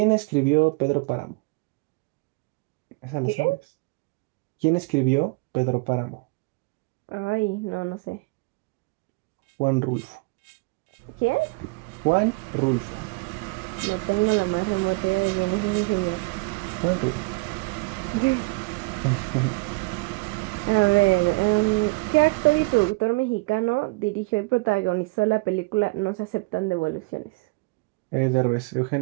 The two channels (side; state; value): left; quieter; 27.0 dB